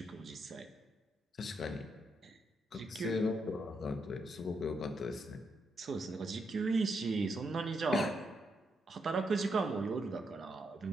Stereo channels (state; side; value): normal; both; correlation 0.80